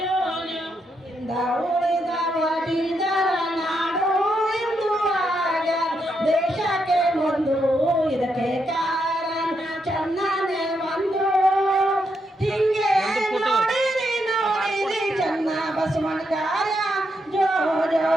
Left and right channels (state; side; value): normal; both; correlation 0.80